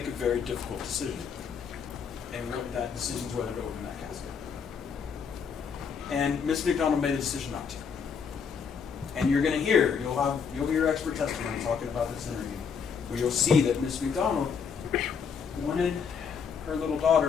a very difficult decision. And what that decision's whether to open that casket. And Miss McDonald made a decision not to. And you're going to hear, you'll hear expert testimony talking about this interview, where you'll see that Miss McDonald wanted her little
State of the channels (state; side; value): quieter; right; 6.4 dB